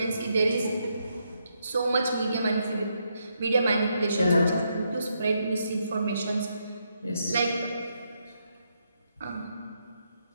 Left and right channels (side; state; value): both; inverted; correlation -0.79